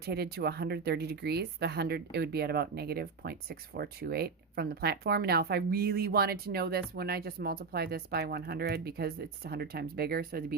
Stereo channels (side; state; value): left; quieter; 5.0 dB